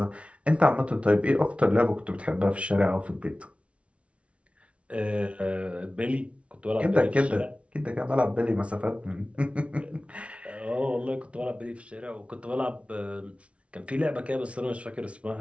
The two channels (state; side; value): late; left; 0.062 ms